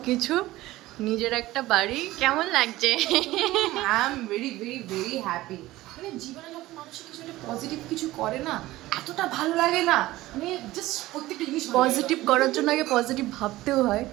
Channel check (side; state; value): left; quieter; 17.2 dB